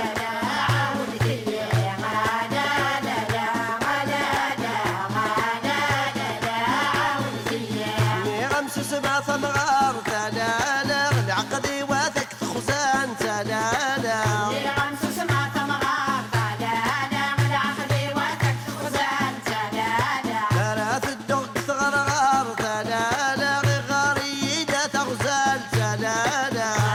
سبع ثمغار ثلالا العقدي واثق خزان ثلالا خمس سبع ثمغار ثلالا العقدي واثق خزان ثلالا ثلاث الدق ثغرغار ثلالا غاريدة تغزال ثلالا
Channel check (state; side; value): identical; both; correlation 1.00